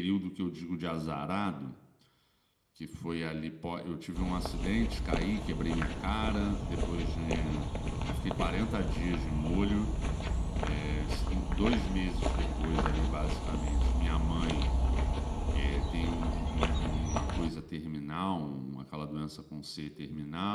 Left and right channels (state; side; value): identical; both; correlation 1.00